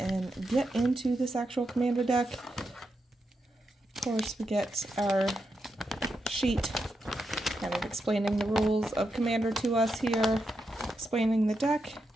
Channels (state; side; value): normal; both; correlation 0.85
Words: get into this actual Commander deck. Of course, we get our sheet kind of explaining the rules of Commander to us here, explaining the deck.